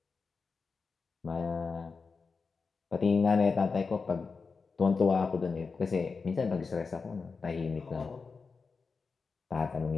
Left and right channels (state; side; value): quieter; right; 4.8 dB